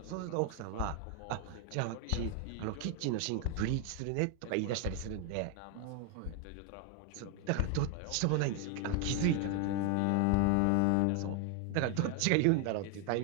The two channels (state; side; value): different; both; correlation 0.01